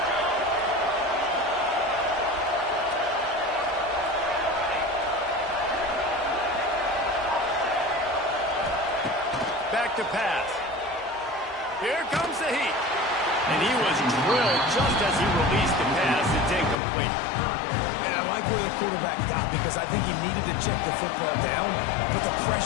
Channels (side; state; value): right; drops out; at 16.8 s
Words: Back to pass. Here comes the heat. And he was drilled just as he released the pass. It's incomplete. And I like where the quarterback got because I think he needed to check the football down, but the